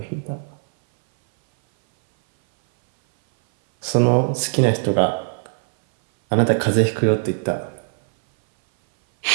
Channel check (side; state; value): left; silent; 60 dB below the other